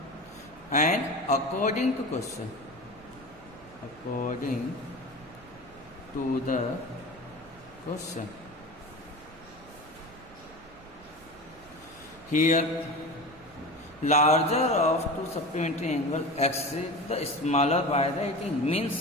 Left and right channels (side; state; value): right; noise; rumble, 23 dB below the sound